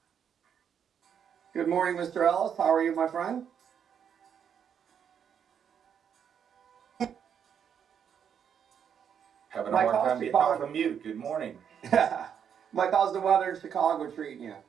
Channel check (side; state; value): left; quieter; 8.0 dB